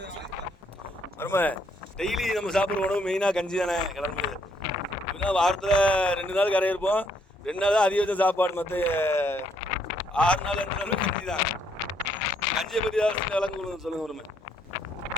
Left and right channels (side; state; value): both; normal; correlation 0.70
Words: டெய்லி நம்ம சாப்பிட்ற உணவு மெயினாக கஞ்சி தானே கிளம்பு. இப்படின்னா வாரத்தில் 2 நாள் கரை இருப்போம். 2 நாள் தான் அதிகபட்சம் சாப்பாடு. மற்ற 6 நாள் 2 நாள் கஞ்சி தான். கஞ்சியை பற்றி ஏதாவது விளங்க சொல்லுங்க. ஒருமை